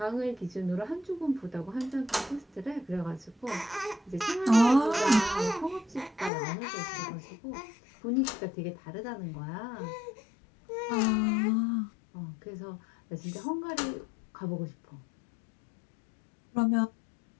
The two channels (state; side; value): drops out; right; at 6.3 s